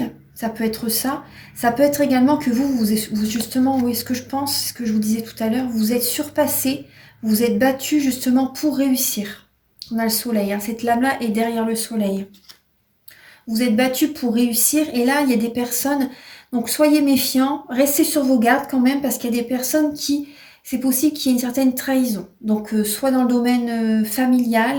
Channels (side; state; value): both; identical; correlation 1.00